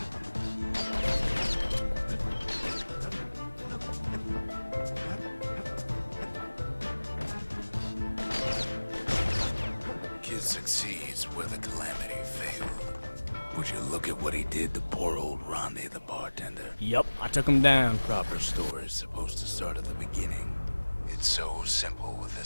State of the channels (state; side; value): inverted; both; correlation -1.00